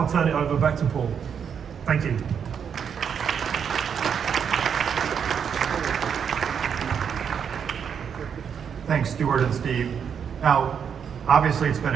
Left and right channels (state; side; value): quieter; left; 7.4 dB